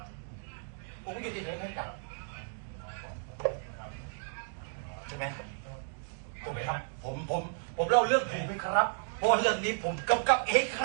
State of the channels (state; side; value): silent; left; digital silence